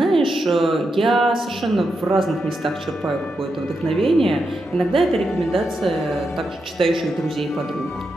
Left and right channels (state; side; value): normal; both; correlation 0.85